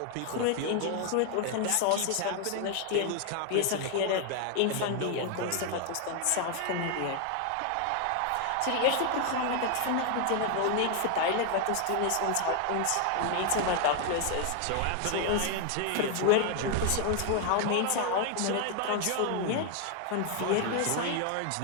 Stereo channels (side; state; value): both; different; correlation 0.01